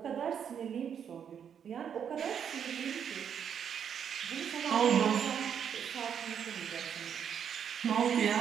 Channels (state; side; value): quieter; left; 8.1 dB